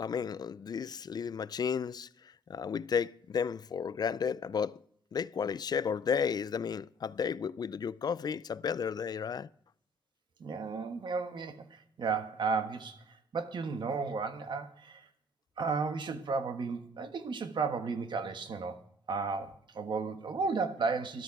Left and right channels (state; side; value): normal; both; correlation 0.54